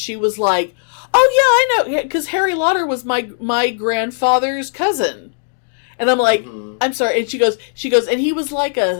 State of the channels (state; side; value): silent; right; digital silence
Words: was like, "Oh yeah, I know, because Harry Lauder was my grandfather's cousin." And I'm like, I'm sorry. And she goes, and he was like